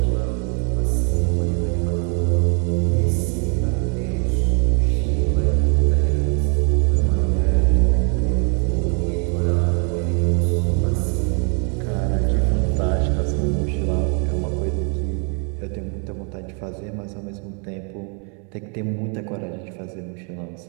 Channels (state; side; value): quieter; left; 38.4 dB